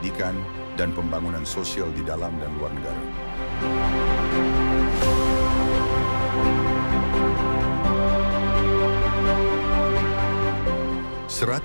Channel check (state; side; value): inverted; both; correlation -1.00